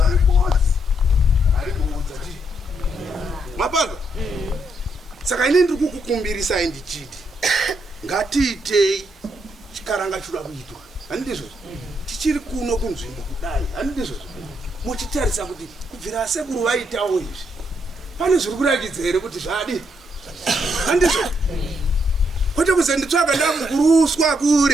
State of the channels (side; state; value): both; normal; correlation 0.76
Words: Mapanga saka ine ndiri kukukumbirisa ndichiti ngatiitei chikaranga choda kuitwa. Handizvo tichiri kuno kunzvimbo kudai, handizvo muchitarisa kuti kubvira sekuru vaitawo izvi pane zviri kurakidza here kuti zvadi. Handizvo kwete kuzenditsvaga ndakuruswa